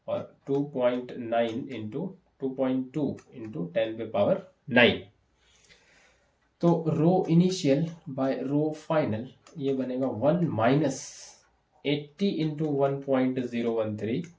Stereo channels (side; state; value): both; identical; correlation 1.00